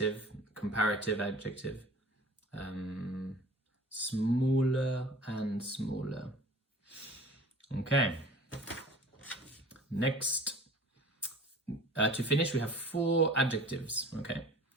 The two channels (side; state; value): both; normal; correlation 0.45